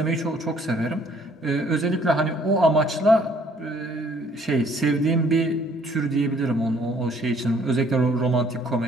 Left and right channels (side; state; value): both; normal; correlation 0.61